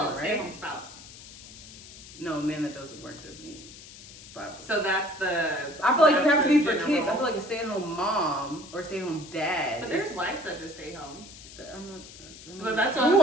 Well, right? stay-at-home spouse. No, a man that doesn't work doesn't eat. It's Bible. So that's the. I feel like it would have to be for general. kids. I feel like a stay-at-home mom or a stay-at-home dad. But there's wives that just stay home. But that's who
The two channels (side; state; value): left; noise; hiss, 17 dB below the sound